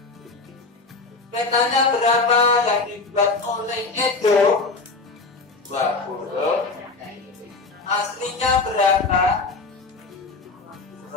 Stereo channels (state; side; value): quieter; right; 3.9 dB